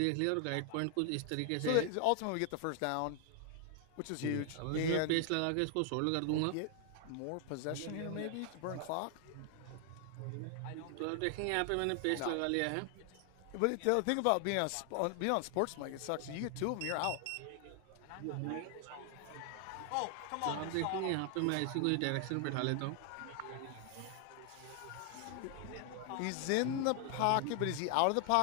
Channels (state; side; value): different; both; correlation 0.00